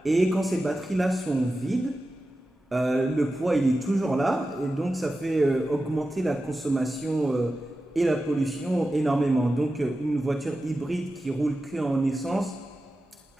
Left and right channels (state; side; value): normal; both; correlation 0.93